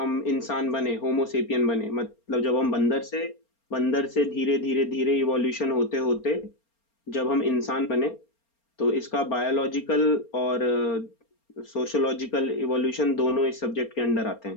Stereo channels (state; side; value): late; right; 4.3 ms